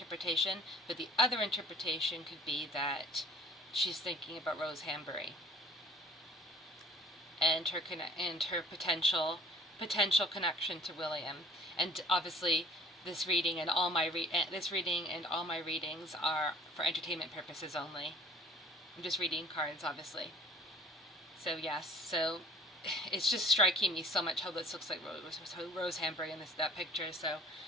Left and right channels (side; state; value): both; normal; correlation 0.50